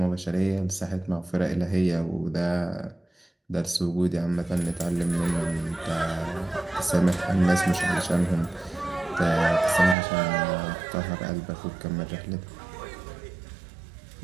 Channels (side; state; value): left; drops out; at 10.0 s